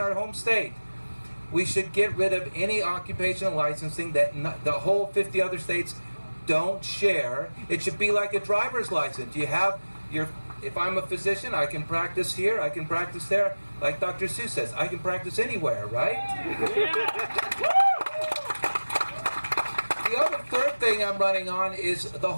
home state. We should get rid of any occupational licensing that the whole 50 other states don't share. It should be like a driver's license. You have if I'm a physician, I can practice here, I can practice there. Like Dr. Seuss says, I can practice anywhere, right? The other third thing I'm running on is the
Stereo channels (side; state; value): both; inverted; correlation -1.00